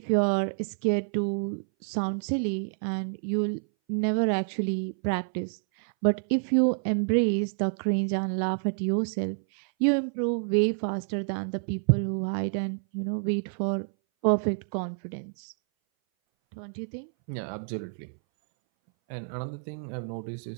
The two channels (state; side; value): silent; left; 59 dB below the other